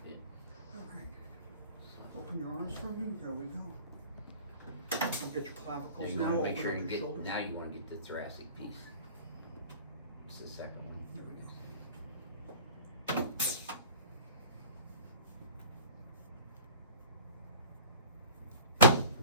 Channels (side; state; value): both; inverted; correlation -0.42